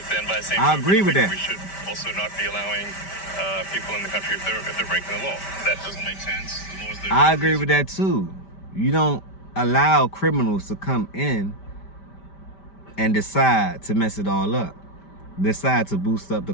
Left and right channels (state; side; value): late; right; 5.1 ms